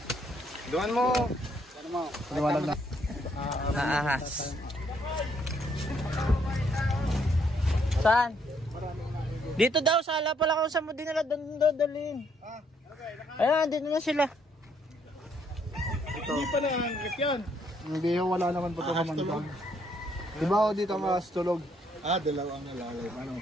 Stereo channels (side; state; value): both; normal; correlation 0.70